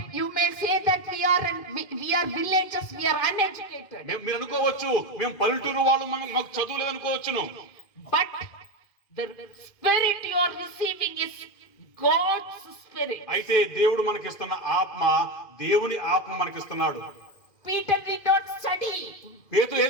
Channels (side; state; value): right; late; 2.1 ms